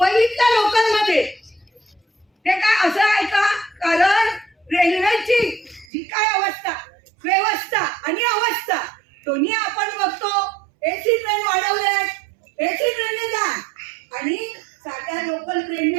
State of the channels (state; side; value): drops out; left; at 5.9 s